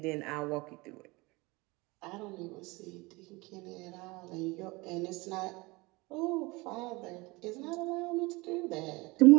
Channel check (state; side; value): quieter; left; 23.9 dB